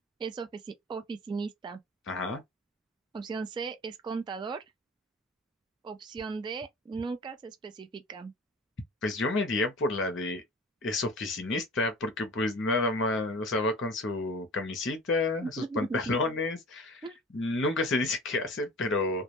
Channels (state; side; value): normal; both; correlation 0.40